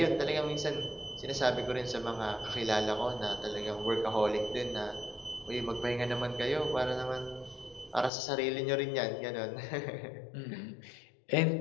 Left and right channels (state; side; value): drops out; right; at 8.1 s